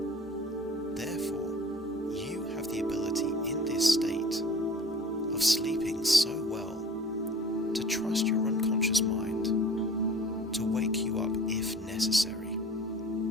Therefore, you have the ability in this state of sleeping so well to trust your unconscious mind to wake you up if necessary,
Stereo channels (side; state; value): both; normal; correlation 0.45